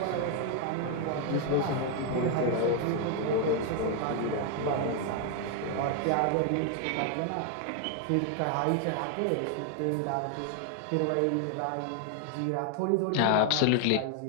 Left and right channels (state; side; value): different; both; correlation 0.00